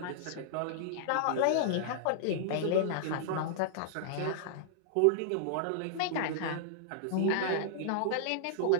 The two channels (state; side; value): different; both; correlation -0.01